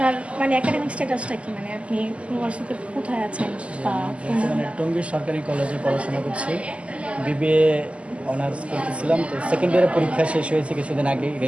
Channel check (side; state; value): left; late; 0.059 ms